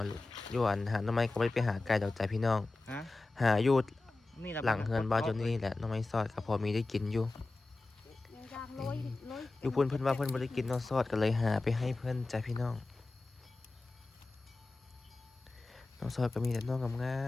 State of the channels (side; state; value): right; quieter; 3.2 dB